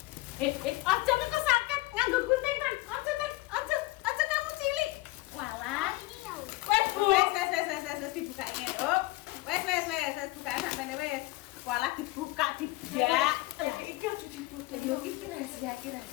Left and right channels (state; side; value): quieter; right; 20.3 dB